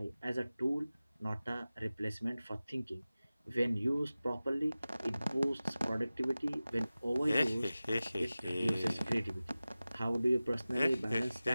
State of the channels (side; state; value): both; inverted; correlation -0.97